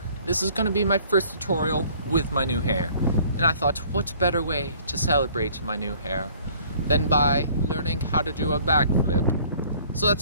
this is going to be my first tutorial with my new hair, and I thought what better way to celebrate my new hair than by learning how to do a backflip. So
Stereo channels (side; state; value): both; inverted; correlation -0.55